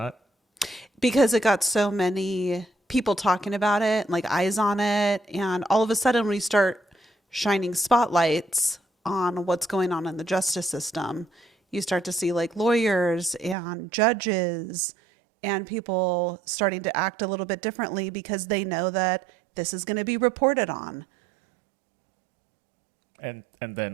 Because it got so many people talking about it, eyes on it. And all of a sudden we start shining spotlights on what's going on in the justice system. You start to see lawyers and judges and people starting to act a little bit differently because they know that this is going to be reported on. And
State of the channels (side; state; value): left; drops out; at 13.6 s